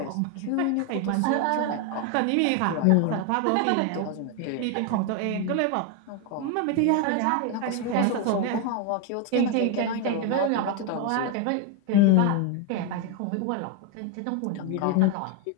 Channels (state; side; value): different; both; correlation 0.01